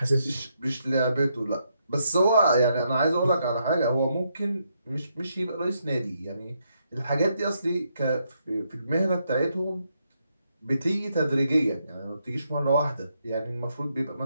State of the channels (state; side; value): inverted; both; correlation -0.78